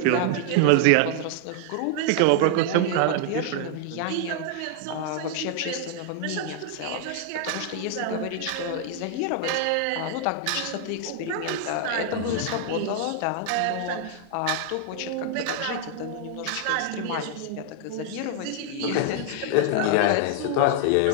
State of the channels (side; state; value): both; different; correlation 0.00